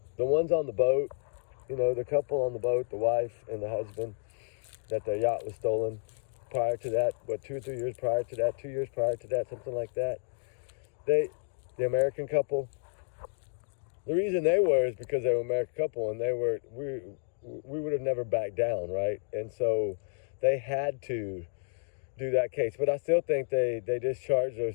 The ones on the boat, you know, the couple on the boat, the wife and the husband, that their yacht was stolen prior to that, 2 or 3 years prior to that, 2 years prior to that, something like that. The American couple, the reason they were is because they were an American couple, and we would have never backed down, right? And so they had to do that case. But I still think they discharged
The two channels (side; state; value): right; silent; digital silence